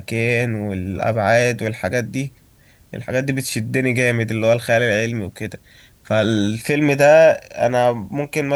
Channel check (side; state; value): both; identical; correlation 1.00